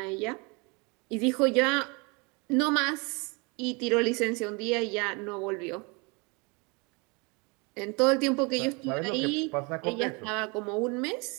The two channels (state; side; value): quieter; left; 29.7 dB